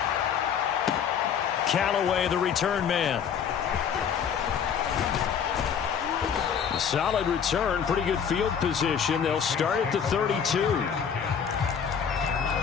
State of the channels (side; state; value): right; quieter; 7.5 dB